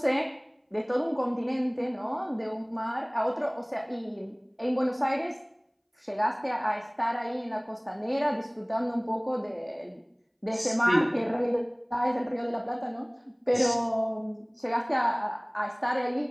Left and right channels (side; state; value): both; identical; correlation 1.00